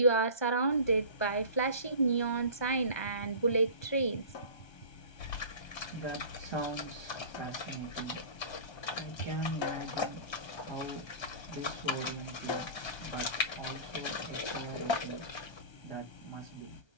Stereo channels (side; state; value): right; late; 1.3 ms